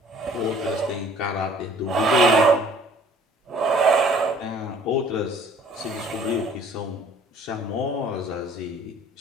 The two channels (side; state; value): both; normal; correlation 0.54